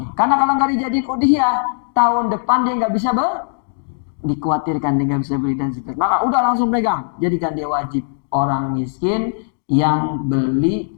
Karena kalau nggak dijadiin udhiyah, tahun depan dia nggak bisa dikhawatirkan dia nggak bisa beli dan seterusnya. Maka udah langsung pegang, jadikan dia wajib orang miskin yang beli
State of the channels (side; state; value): right; silent; digital silence